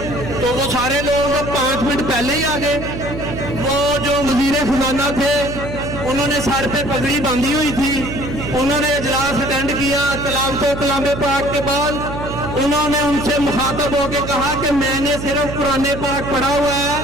तो वो सारे लोग 5 मिनट पहले ही आ गए। वो जो वजीर खजाना थे उन्होंने सर पे पगड़ी बांधी हुई थी, उन्होंने इजलास अटेंड किया। कलाम पाक के बाद उन्होंने उनसे मुखातब होकर कहा कि मैंने सिर्फ कुरान पाक पढ़ा हुआ है,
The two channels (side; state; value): right; noise; hum, 7 dB below the sound